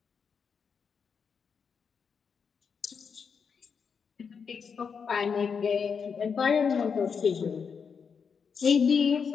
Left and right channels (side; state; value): right; quieter; 6.2 dB